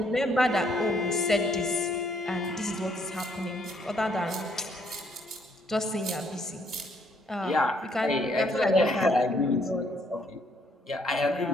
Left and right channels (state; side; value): normal; both; correlation 0.68